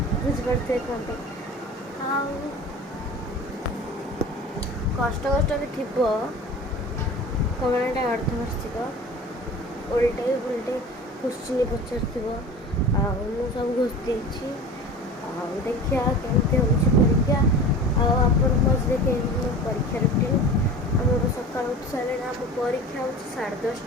ବୁଝିପାରୁଥିବେ କୁହନ୍ତୁ। ଆଉ କଷ୍ଟରେ ଥିବ କମେଣ୍ଟ ଅର୍ଦ୍ଧବାର୍ଷିକ ଓଲଟେ କ୍ୱେଶ୍ଚିନ୍ ପଚାରିଥିବ। ଆଉ ମୁଁ ସବୁ ଘୋଷି ଦେଇଛି। ଆଉ ଦେଖିବା କେମିତି ହେଉଛି ପରୀକ୍ଷା। ଆଉ ଆପଣ ମଝିରେ କେମିତି ମୋ ପରୀକ୍ଷା ରୁଟିନ୍ ଆମର ସକାଳୁ ଉଠି ସାରିଲେଣି। ଆମ ପରୀକ୍ଷା ହେଉଛି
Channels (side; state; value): both; normal; correlation 0.37